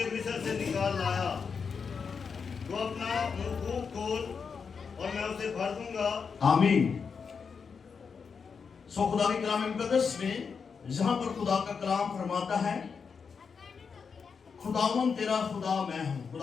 मिस्र से निकाल लाया। तो अपना मुंह खोल और मैं उसे भर दूंगा। आमीन। सो खुदा के कलाम मुकद्दस में जहां पर खुदा का कलाम फरमाता है, खुदावन तेरा खुदा मैं हूं,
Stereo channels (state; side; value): quieter; right; 5.8 dB